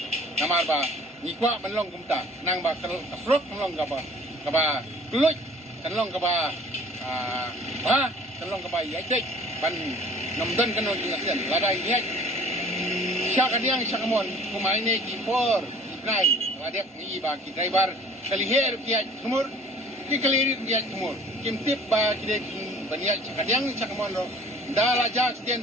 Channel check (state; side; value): normal; both; correlation 0.50